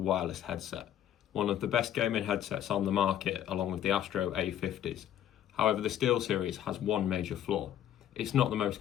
headset, one of the best gaming headsets on the market along with the Astro A50s. However, the SteelSeries has one major flaw. It's not the most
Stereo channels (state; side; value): quieter; right; 10.8 dB